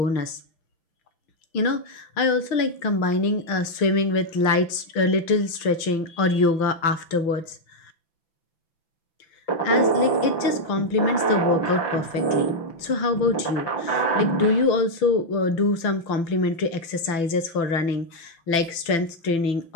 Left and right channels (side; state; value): right; late; 5.9 ms